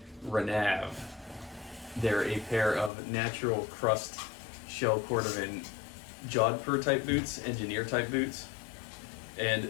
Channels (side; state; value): right; drops out; at 2.9 s